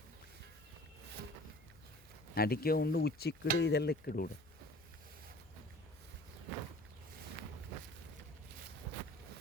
ಅಡಿಕೆ ಉಂಡು ಉಚ್ಚಿಕ್ಕಡು ಇದೆಲ್ಲ ಇಕ್ಕಡು ಕೂಡ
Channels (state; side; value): noise; left; hum, 24 dB below the sound